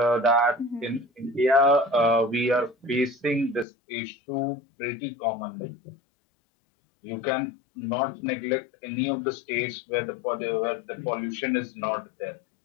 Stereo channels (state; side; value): drops out; right; at 3.7 s